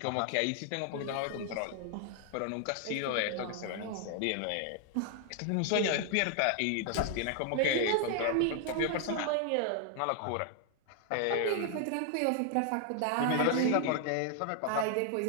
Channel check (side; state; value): both; different; correlation 0.00